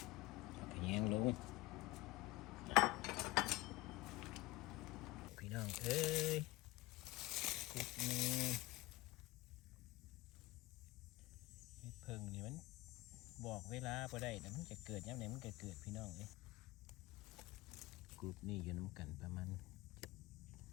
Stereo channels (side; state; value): right; quieter; 19.8 dB